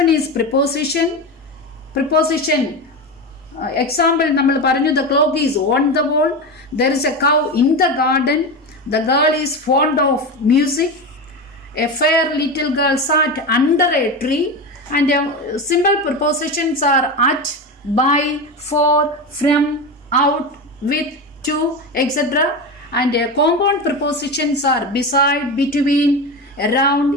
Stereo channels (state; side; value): normal; both; correlation 0.21